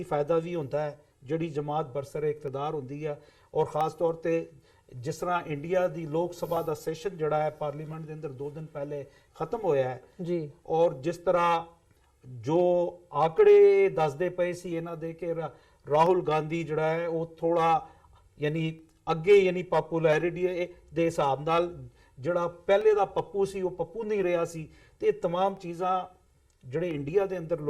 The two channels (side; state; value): both; identical; correlation 1.00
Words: ਫਾਇਦਾ ਵੀ ਹੁੰਦਾ ਹੈ, ਜਿਹੜੀ ਜਮਾਤ ਬਰਸਰੇ ਇਕਤਦਾਰ ਹੁੰਦੀ ਆ। ਔਰ ਖਾਸ ਤੌਰ ਤੇ ਜਿਸ ਤਰ੍ਹਾਂ ਇੰਡੀਆ ਦੀ ਲੋਕ ਸਭਾ ਦਾ ਸੈਸ਼ਨ ਜਿਹੜਾ ਹੈ ਪਾਰਲੀਮੈਂਟ ਦੇ ਅੰਦਰ 2 ਦਿਨ ਪਹਿਲੇ ਖਤਮ ਹੋਇਆ ਹੈ ਜੀ, ਔਰ ਜਿਸ ਤਰ੍ਹਾਂ ਜੋ ਆંકੜੇ ਦੱਸਦੇ ਪਏ ਸੀ ਇਹਨਾਂ ਦੇ ਕਿ ਰਾਹੁਲ ਗਾਂਧੀ ਜਿਹੜਾ ਹੈ ਉਹ ਥੋੜਾ ਯਾਨੀ ਅੱਗੇ ਯਾਨੀ ਪਪੂਲੈਰਿਟੀ ਦੇ ਹਿਸਾਬ ਨਾਲ ਜਿਹੜਾ ਪਹਿਲੇ ਦਾ ਪੱਪੂ ਸੀ ਉਹ ਪੱਪੂ ਨਹੀਂ ਰਿਹਾ ਸੀ। ਤੇ ਇਹ तमाम ਚੀਜ਼ਾਂ ਜਿਹੜੇ ਇੰਡੀਆ ਦੇ ਅੰਦਰ